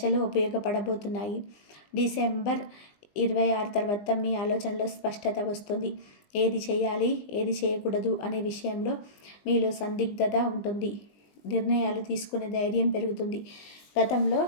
ఉపయోగపడబోతున్నాయి. డిసెంబర్ 26 తర్వాత మీ ఆలోచనలో స్పష్టత వస్తుంది. ఏది చేయాలి, ఏది చేయకూడదు అనే విషయంలో మీలో సందిగ్ధత ఉంటుంది. నిర్ణయాలు తీసుకునే ధైర్యం పెరుగుతుంది. గతంలో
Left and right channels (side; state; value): right; late; 20 ms